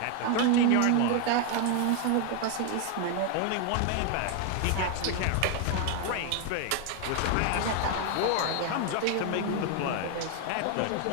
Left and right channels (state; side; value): different; both; correlation 0.01